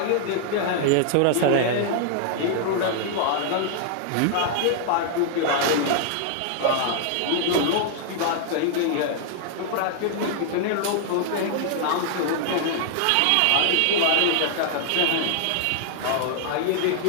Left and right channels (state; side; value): different; both; correlation 0.00